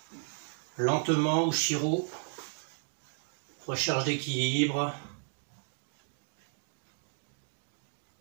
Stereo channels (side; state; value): left; silent; 55 dB below the other